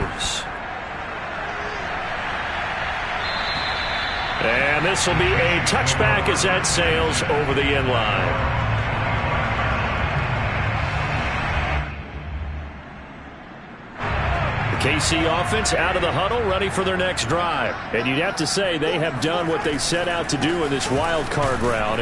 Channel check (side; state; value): both; identical; correlation 1.00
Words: And this will be a touchback as that sails over the end line. The KC offense out of the huddle, ready for their next drive. And you'd have to say they have done what they set out to do in this wild card round.